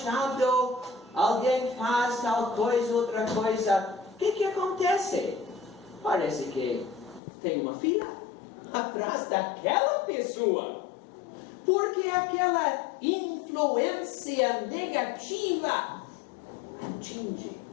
alguém faz tal coisa, outra coisa. O que acontece? Parece que tem uma fila atrás daquela pessoa, porque aquela influência negativa atinge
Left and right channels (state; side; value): drops out; right; at 7.2 s